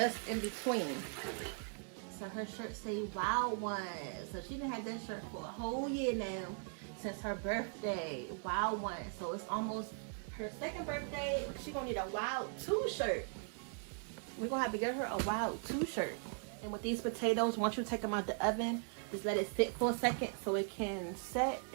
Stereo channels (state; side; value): silent; left; 52 dB below the other